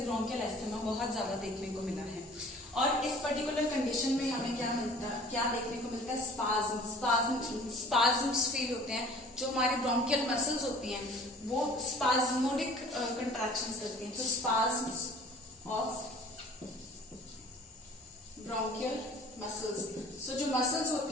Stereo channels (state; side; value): normal; both; correlation 0.48